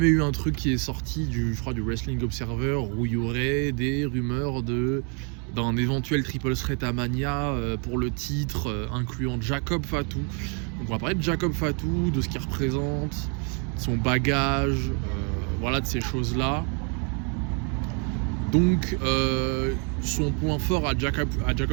eu un truc qui est sorti je crois du Wrestling Observer où il y aurait des rumeurs d'un éventuel triple threat à Mania pour le titre incluant Jacob Fatou. Donc on va parler de Jacob Fatou, de ce qu'il représente, de son bagage, voilà, de ces choses-là. Donc son point fort à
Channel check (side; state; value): left; quieter; 37.1 dB